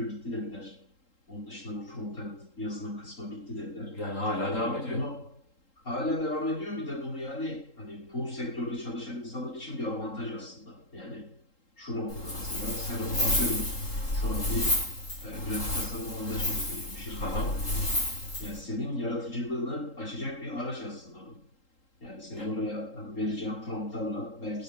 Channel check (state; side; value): late; right; 3.8 ms